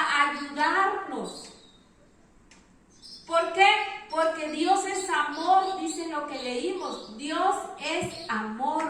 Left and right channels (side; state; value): both; identical; correlation 1.00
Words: ayudarnos. ¿Por qué? Porque Dios es amor, dice lo que leímos. Dios es